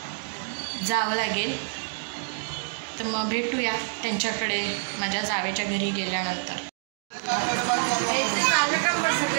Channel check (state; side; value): silent; left; 55 dB below the other